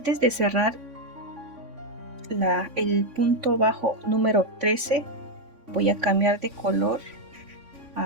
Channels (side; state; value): left; late; 3.5 ms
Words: de cerrar el punto bajo número 13 voy a cambiar de color